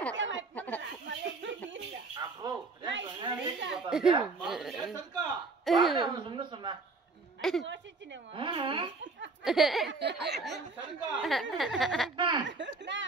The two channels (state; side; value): quieter; left; 3.9 dB